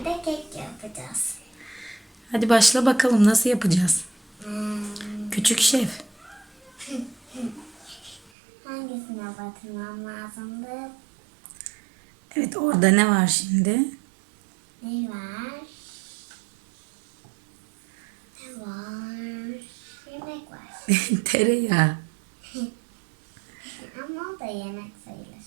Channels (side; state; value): left; drops out; at 8.3 s